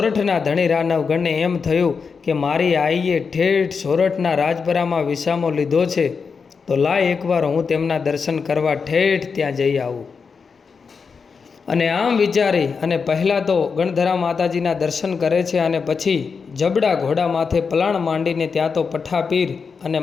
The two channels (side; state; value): right; quieter; 5.4 dB